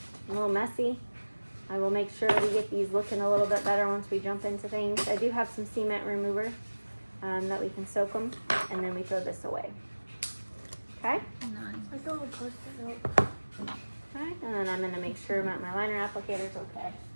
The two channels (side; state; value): both; inverted; correlation -1.00